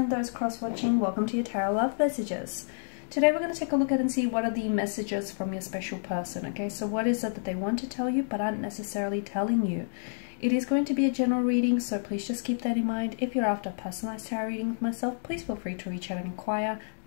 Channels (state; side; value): silent; right; digital silence